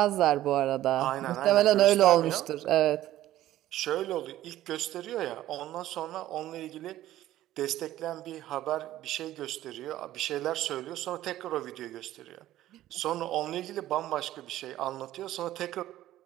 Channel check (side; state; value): left; quieter; 14.1 dB